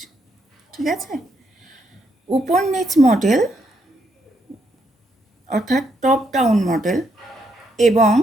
ঠিক আছে। উপর নিচ মডেল অর্থাৎ টপ ডাউন মডেল এবং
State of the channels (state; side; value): normal; both; correlation 0.77